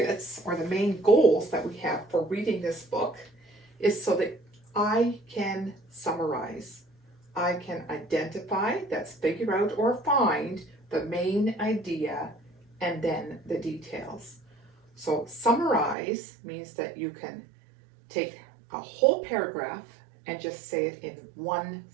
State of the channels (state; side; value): drops out; left; at 16.0 s